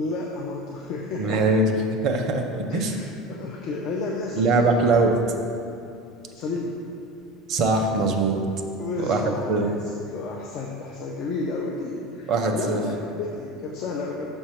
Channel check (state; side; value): normal; both; correlation 0.30